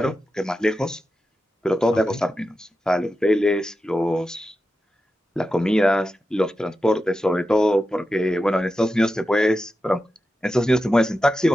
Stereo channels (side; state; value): both; normal; correlation 0.90